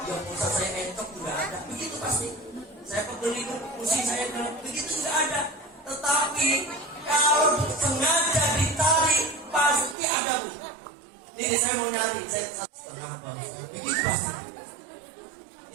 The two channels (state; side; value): drops out; left; at 10.0 s